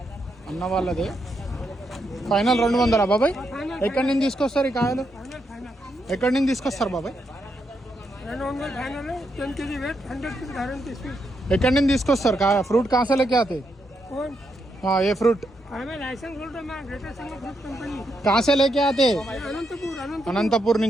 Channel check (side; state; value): both; normal; correlation 0.81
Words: అన్న వాళ్ళదే ఫైనల్ 200 బాబాయ్. ఎక్కడి నుంచి తీసుకొస్తారు ఈ కాయలు? ఎక్కడి నుంచి తీసుకొస్తారు బాబాయ్? ఎక్కడి నుంచి తీసుకొస్తారు కాయ? ఫ్రూట్ కాసే లేకే ఆతే? ఏ ఫ్రూట్ కాసే లేకే ఆతే? అనంతపూర్